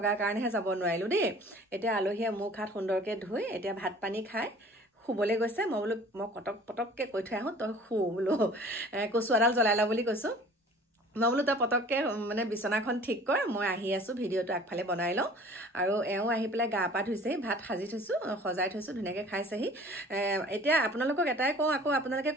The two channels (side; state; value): both; normal; correlation 0.48